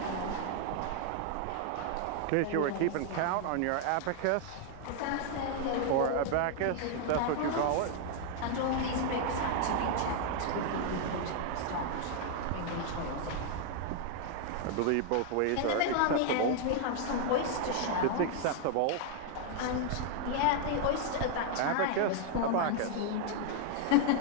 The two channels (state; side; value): different; both; correlation 0.00